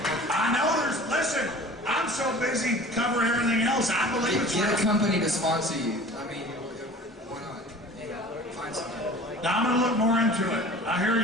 I know listen, I'm so busy covering everything else, I believe it's real. Get a company to sponsor you. I mean, why not? Find something. Now I'm going to look more into it. I hear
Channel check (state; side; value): normal; both; correlation 0.43